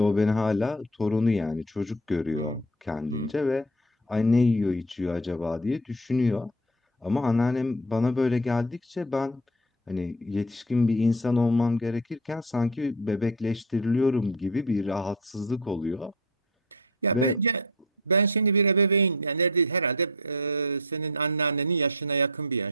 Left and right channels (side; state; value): both; normal; correlation 0.32